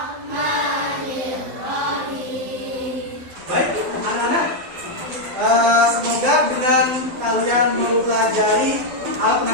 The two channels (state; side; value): late; left; 12 ms